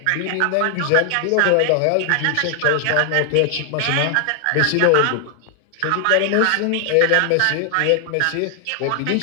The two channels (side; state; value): both; different; correlation 0.00